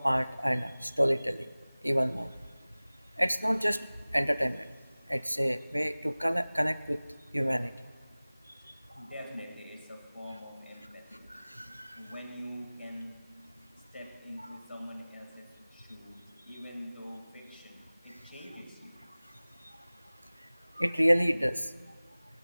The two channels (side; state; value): both; inverted; correlation -0.99